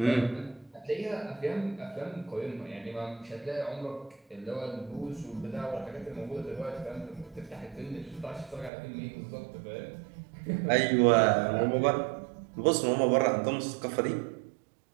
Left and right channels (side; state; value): left; drops out; at 8.7 s